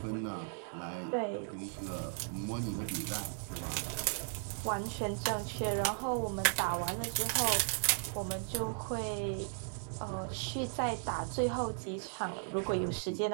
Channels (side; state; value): left; silent; 54 dB below the other